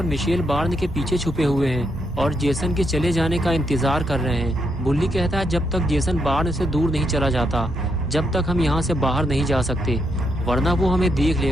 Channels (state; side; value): normal; both; correlation 0.79